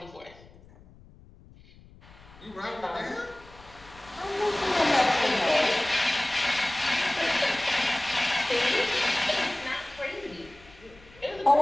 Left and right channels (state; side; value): noise; left; rumble, 23 dB below the sound